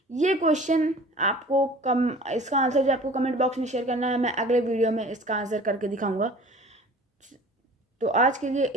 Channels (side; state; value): both; normal; correlation 0.44